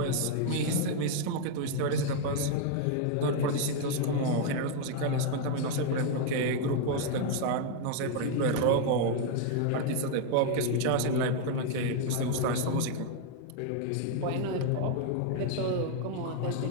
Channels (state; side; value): different; both; correlation 0.00